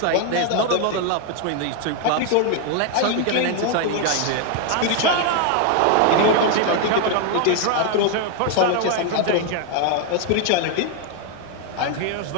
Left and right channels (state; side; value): different; both; correlation 0.00